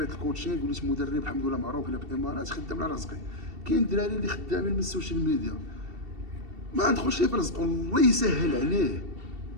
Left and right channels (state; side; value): late; left; 2.7 ms